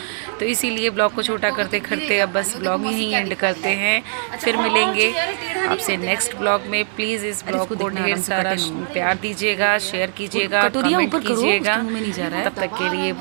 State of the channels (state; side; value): silent; left; 62 dB below the other